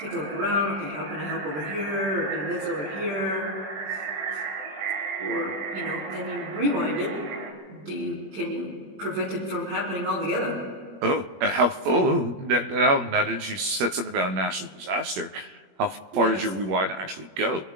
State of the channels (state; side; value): late; left; 21 ms